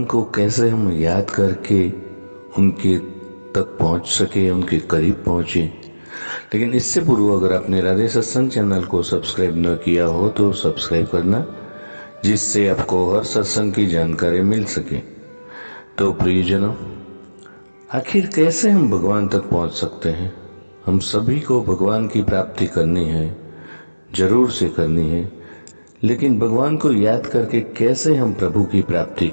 को कैसे हम याद करके उनके तक पहुंच सके, उनके करीब पहुंचे। लेकिन इससे पूर्व अगर आपने राधे सत्संग चैनल को सब्सक्राइब न किया हो तो सब्सक्राइब करना, जिससे आपको हर सत्संग की जानकारी मिल सके। तो प्रियजनों, आखिर कैसे हम भगवान तक पहुंच सकते हैं? हम सभी को भगवान की प्राप्ति करनी है, जरूर से करनी है। लेकिन भगवान को याद करके कैसे हम प्रभु की प्राप्ति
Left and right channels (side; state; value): both; inverted; correlation -1.00